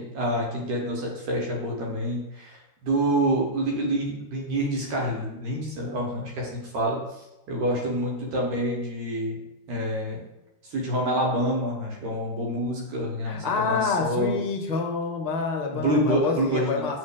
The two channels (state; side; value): late; left; 13 ms